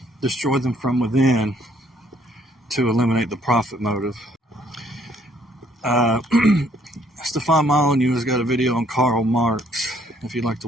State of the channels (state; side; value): normal; both; correlation 0.65